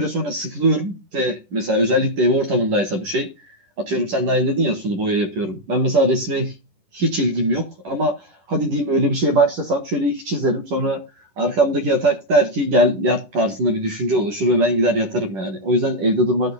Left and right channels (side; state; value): left; late; 10 ms